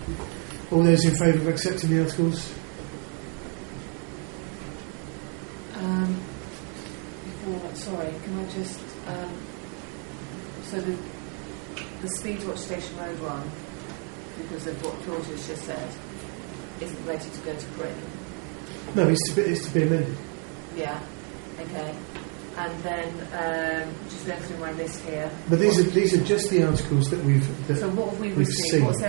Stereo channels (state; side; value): quieter; left; 38.9 dB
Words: All those in favour of accepting the articles? Sorry, can I just... so the Speedwatch Station Road one, because of what Claudia's just said, isn't ready to go to print. No, it's to be amended. Yeah, okay. And then, just going through my list here. But these are just the articles that so what have we we've received? seen. What's